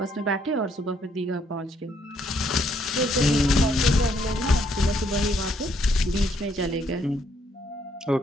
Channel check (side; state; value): both; normal; correlation 0.70